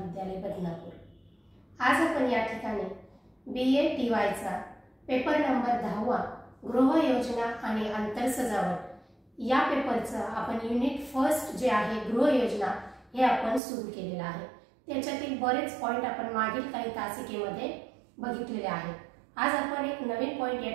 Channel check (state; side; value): drops out; left; at 13.6 s